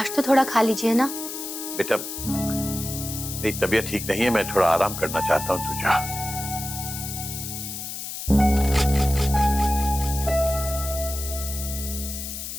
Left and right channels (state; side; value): noise; left; hiss, 7 dB below the sound